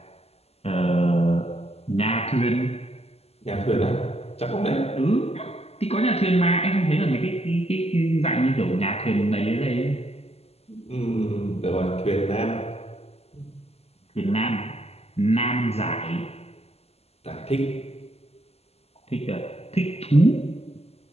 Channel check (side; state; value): right; late; 0.30 ms